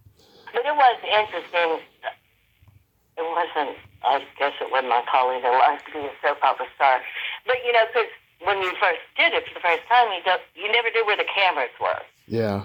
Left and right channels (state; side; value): identical; both; correlation 1.00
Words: But it was interesting. It wasn't, I guess it wasn't my calling in life to be a soap opera star. But, you know, because when you first did it for the first time, you never knew where the cameras were. Yeah.